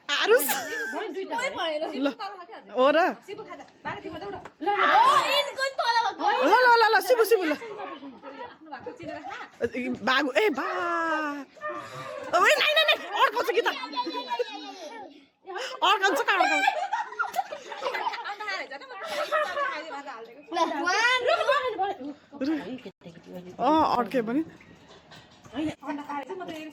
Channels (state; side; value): identical; both; correlation 1.00